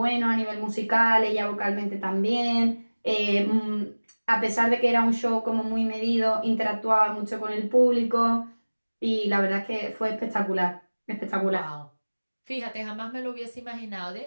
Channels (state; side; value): inverted; both; correlation -1.00